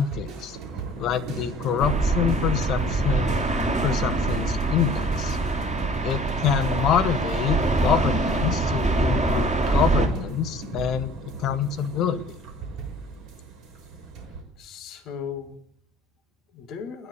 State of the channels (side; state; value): both; normal; correlation 0.50